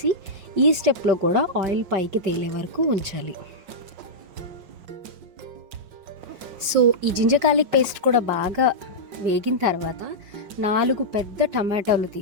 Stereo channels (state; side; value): late; left; 5.5 ms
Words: ఈ స్టెప్లో కూడా ఆయిల్ పైకి తేలే వరకు ఉంచాలి. సో ఈ జింజర్ గార్లిక్ పేస్ట్ కూడా బాగా వేగిన తర్వాత 4 పెద్ద టమాటాలు